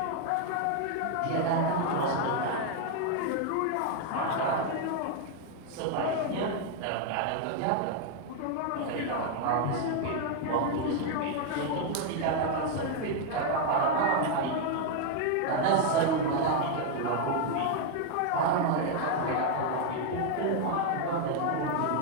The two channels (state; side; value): different; both; correlation 0.00